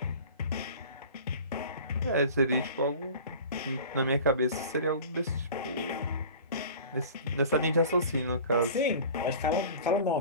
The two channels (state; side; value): inverted; both; correlation -0.41